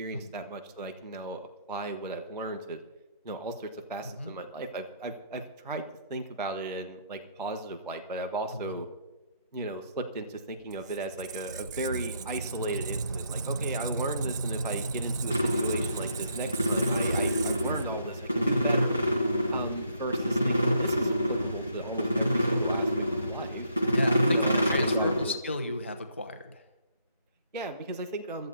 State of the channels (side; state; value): both; inverted; correlation -0.71